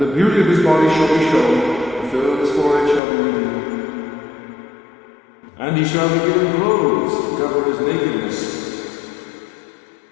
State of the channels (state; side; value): drops out; right; at 3.0 s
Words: beauty of his body shall be shown, the fill of his forehead shall be renewed. And he shall be given clothes to cover his nakedness.